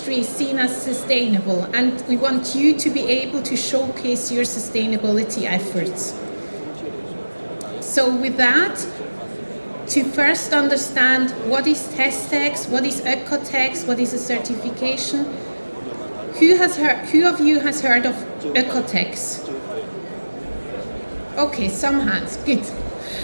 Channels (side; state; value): both; inverted; correlation -1.00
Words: is seen as sustainable, and we want you to be able to showcase your sustainability efforts. So with that, to first understand what is TESTEX, what is OEKO-TEX, what is a certification, who of you has heard of OEKO-TEX? Okay, some hands, good.